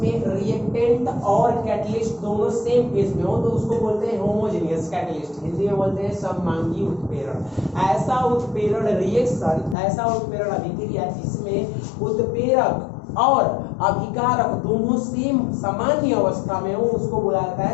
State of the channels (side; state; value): right; drops out; at 9.8 s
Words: रिएक्टेंट और कैटलिस्ट दोनों सेम फेज में हो तो उसको बोलते हैं होमोजेनियस कैटलिस्ट। हिंदी में बोलते हैं सममांगी उत्प्रेरण। ऐसा उत्प्रेरण रिएक्शन, ऐसा उत्प्रेरण अभिक्रिया जिसमें उत्प्रेरक और अभिकारक दोनों सेम सामान्य अवस्था में हो उसको बोला जाता